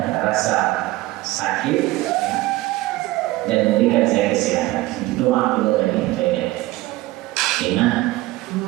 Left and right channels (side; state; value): left; quieter; 18.5 dB